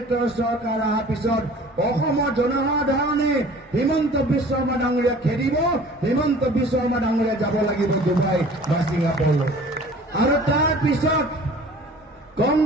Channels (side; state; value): both; normal; correlation 0.47